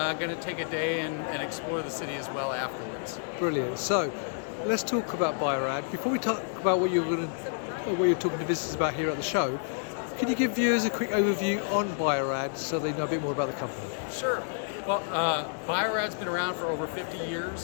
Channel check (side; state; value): right; silent; 58 dB below the other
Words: going to take a day and explore the city as well afterwards. Brilliant. So let's talk about Bio-Rad. Before we talk about what you're talking to visitors about here at the show, can you give viewers a quick overview on Bio-Rad so they know a bit more about the company? Sure. Well, Bio-Rad's been around for over 50